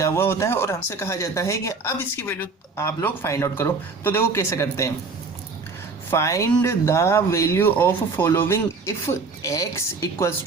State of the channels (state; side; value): quieter; left; 4.2 dB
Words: हुआ होता है और हमसे कहा जाता है कि अब इसकी वैल्यू आप लोग फाइंड आउट करो। तो देखो कैसे करते हैं। Find the value of following if x equals